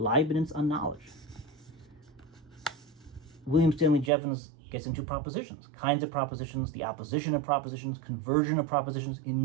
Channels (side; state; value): left; drops out; at 4.1 s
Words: on knowledge. William Stanley Jevons gets into propositions, kinds of propositions, the opposition of propositions, conversion of propositions,